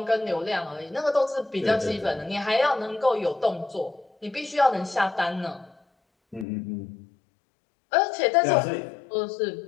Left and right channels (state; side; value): drops out; right; at 6.5 s